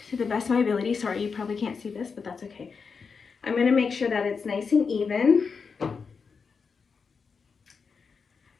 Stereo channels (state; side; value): quieter; right; 5.4 dB